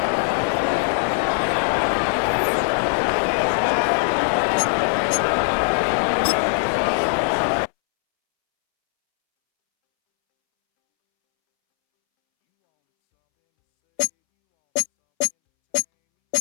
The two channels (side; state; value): right; silent; 65 dB below the other